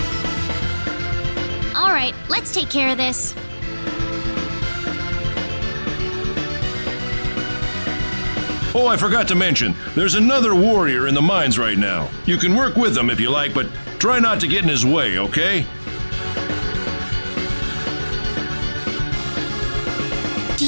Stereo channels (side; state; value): both; inverted; correlation -1.00